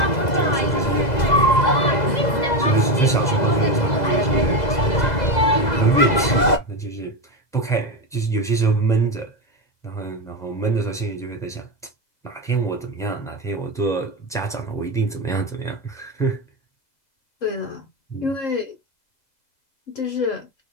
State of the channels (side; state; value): right; late; 2.0 ms